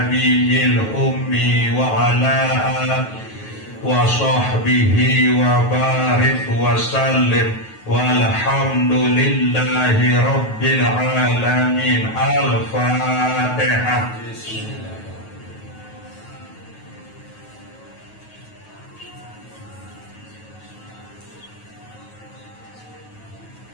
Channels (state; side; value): late; right; 9.3 ms